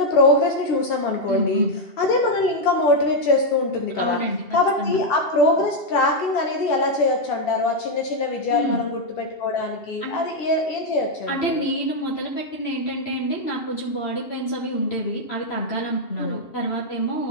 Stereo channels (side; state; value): right; late; 2.7 ms